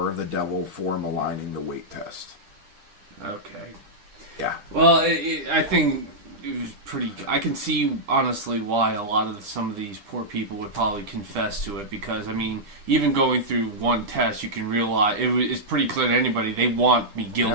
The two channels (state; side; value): late; left; 10 ms